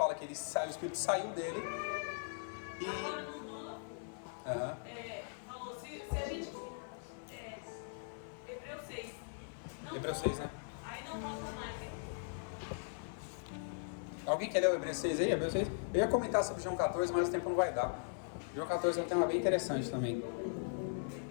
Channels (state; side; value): silent; right; 52 dB below the other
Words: que o Espírito saiu dele e... Agora não falou, se a gente... Hebreus 6. Hebreus 6, né? Aí não volta mais, hein? Alguém quer ler o Hebreus 6 aí? Hebreus 6? Eu ia comentar sobre João 14, mas o tempo não vai dar. João 14 é um tema bem interessante também.